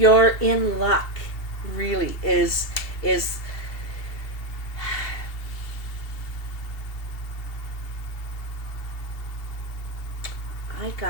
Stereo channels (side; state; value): right; late; 2.7 ms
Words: in luck. Really is. I